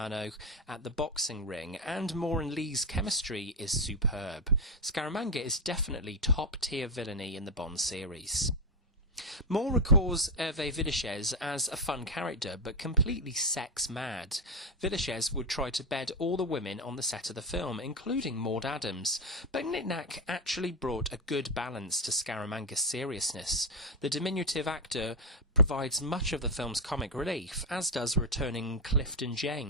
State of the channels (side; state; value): both; normal; correlation 0.08